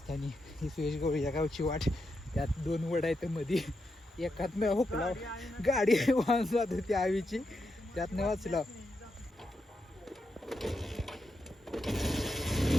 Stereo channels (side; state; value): both; normal; correlation 0.85